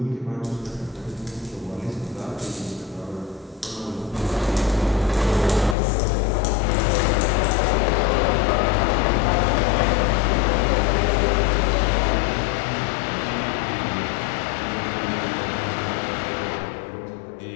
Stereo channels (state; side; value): drops out; right; at 5.8 s